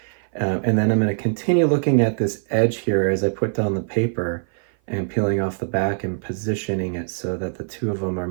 And then I'm going to continue looking at this edge here as I put down the paper and peeling off the back and positioning it so that the two of them are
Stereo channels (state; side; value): silent; left; 56 dB below the other